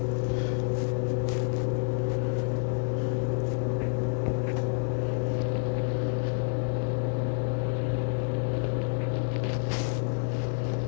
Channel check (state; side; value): silent; right; 59 dB below the other